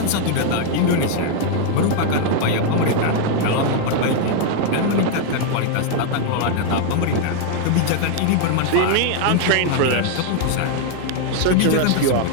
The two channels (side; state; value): both; different; correlation 0.00